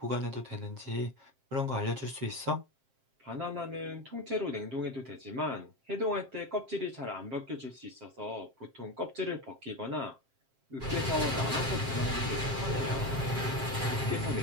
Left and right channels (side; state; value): left; late; 7.5 ms